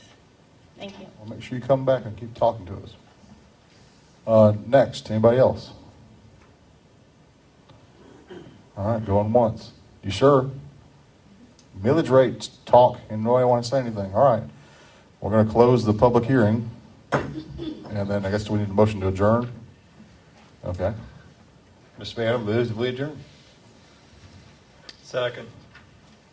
Thank you. Well, make sure you come back and keep talking to us. Next, anybody else? All right, going once. You sure? Millage rates talk, and nobody want to say anything. All right. We're going to close the public hearing. And then I guess we need a motion to adjourn. Okay. Mr. Mayor, move that we adjourn. Second.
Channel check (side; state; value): both; identical; correlation 1.00